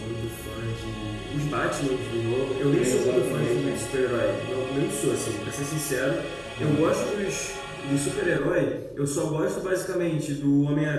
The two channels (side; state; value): both; identical; correlation 1.00